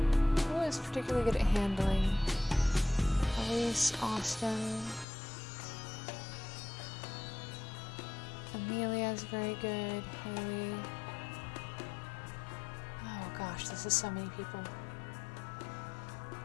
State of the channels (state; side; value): drops out; right; at 5.1 s